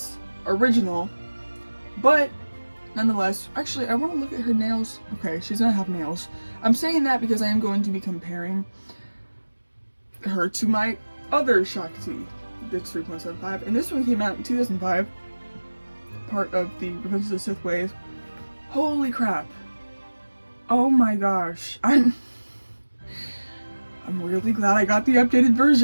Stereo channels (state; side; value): inverted; both; correlation -1.00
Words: original, but nonetheless, actually I want to look at her nails. Okay, she's going to have nails. I'm saying that because I am going to be comparing her to my other Shaak Ti. That's 3.75, and this one came out in 2005, part of the Revenge of the Sith wave. Holy crap. Oh my gosh. I'm really glad I got the updated